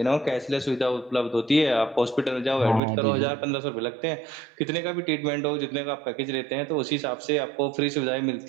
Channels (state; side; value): drops out; left; at 2.8 s